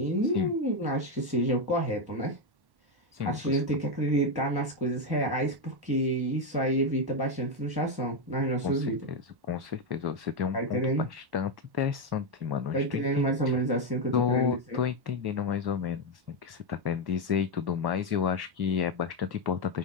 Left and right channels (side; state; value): left; late; 1.1 ms